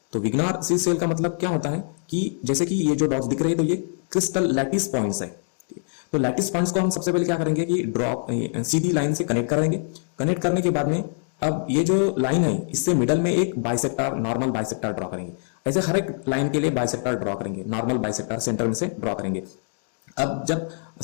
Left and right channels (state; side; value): silent; right; digital silence